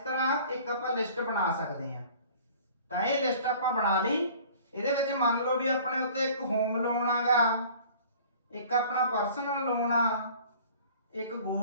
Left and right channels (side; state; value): both; inverted; correlation -0.48